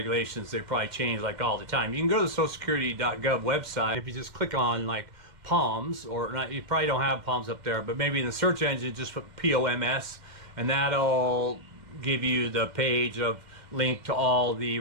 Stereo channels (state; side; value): late; left; 2.1 ms